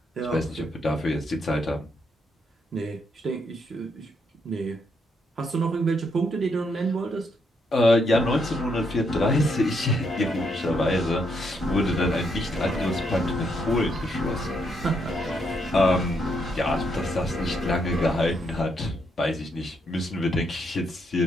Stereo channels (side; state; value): both; normal; correlation 0.76